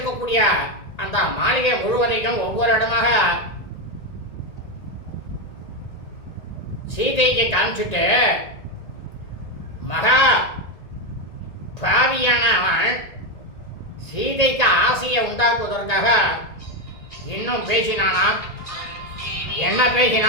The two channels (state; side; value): late; right; 1.9 ms